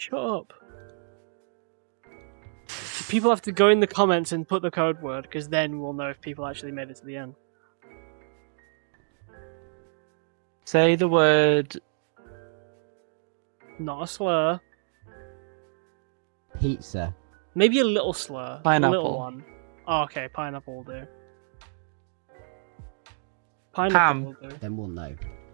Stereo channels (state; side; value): silent; left; 59 dB below the other